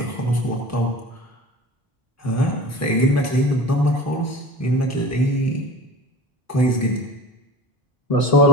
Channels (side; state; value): both; normal; correlation 0.37